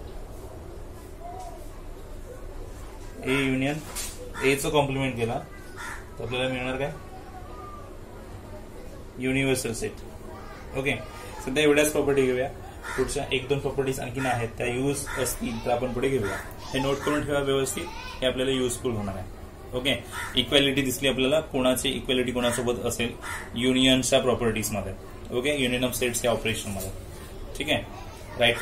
A union A चं कॉम्प्लिमेंट केला तर आपल्याला मिळणार काय, युनिव्हर्सल सेट. ओके, सध्या एवढ्याच प्रॉपर्टी घेऊया. पुढच्या 1-2 प्रॉपर्टीज आणखीन आहेत, त्या यूज असतील तर आपण पुढे घेऊया. हे नोट करून ठेवा व्यवस्थित, हे आपल्याला युजफुल होणार आहे. ओके, इक्वॅलिटी दिसली आपल्याला, कोणाची इक्वॅलिटी कोणासोबत असेल युनियनच्या प्रॉपर्टीज मध्ये. ओके, युनियन ऑफ सेट्स या ऑपरेशन मध्ये. ठीक आहे, राईट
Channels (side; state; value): both; identical; correlation 1.00